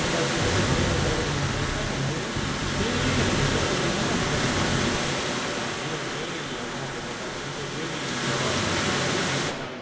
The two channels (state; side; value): identical; both; correlation 1.00